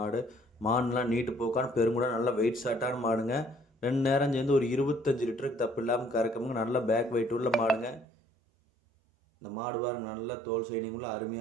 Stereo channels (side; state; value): left; drops out; at 8.1 s